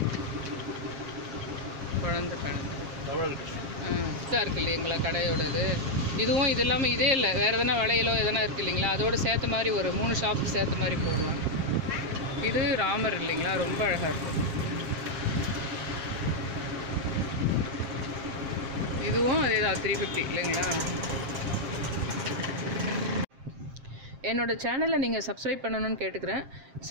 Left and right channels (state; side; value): late; left; 7.4 ms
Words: குழந்தை கண்ணன். இதாக இருக்குது இல்லைங்களா கடையோடது. இதுவும் இது இல்லாமல் இதே இல்லை, வேறு எதனா வளையலோ எதனா இருக்குது இல்லைங்களா, அதோடு சேர்த்த மாதிரி ஒரு 3 ஷாப்பு சேர்த்த மாதிரி போடலாம். இது ராமர் இல்லைங்களா, ரொம்ப அழகாக இருக்கும். இதுவும் அதே தான் 350 இல்லைங்களா. என்னோடய சேனலை நீங்கள் சப்ஸ்கிரைப் பண்ணணும்னு கேட்டுக்கிறேன்.